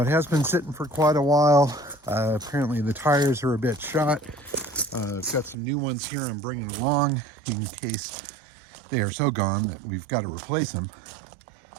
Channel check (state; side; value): drops out; left; at 5.6 s